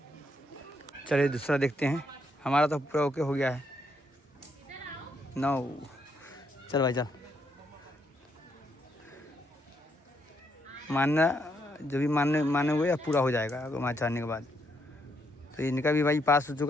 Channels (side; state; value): both; normal; correlation 0.75